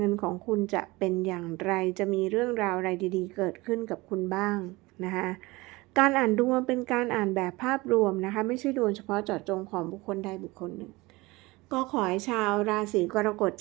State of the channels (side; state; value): left; quieter; 22.1 dB